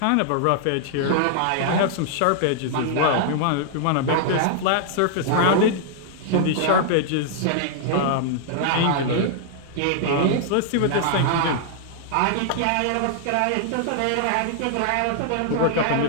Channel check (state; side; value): different; both; correlation -0.01